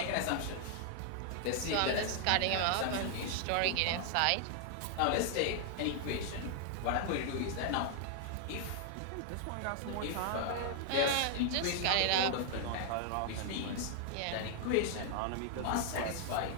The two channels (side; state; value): both; different; correlation 0.00